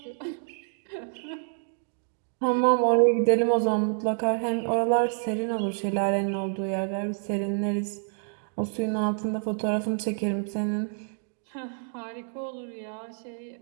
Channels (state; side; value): silent; left; 59 dB below the other